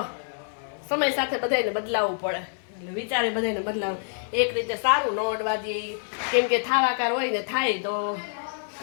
સમય સાથે બધાને બદલાવવું પડે. એટલે વિચારે બધાને બદલાવું. એક રીતે સારું, ન અડવા દે. કેમ કે થાવાકાર હોય ને થાય તો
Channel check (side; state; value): right; silent; digital silence